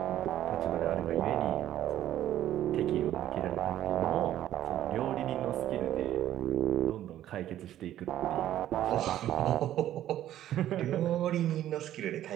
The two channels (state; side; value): quieter; left; 12.5 dB